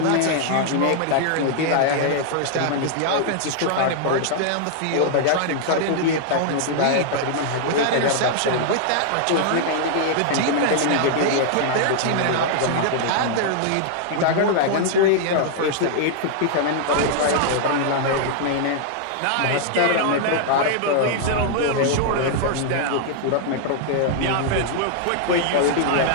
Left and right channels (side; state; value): both; different; correlation -0.01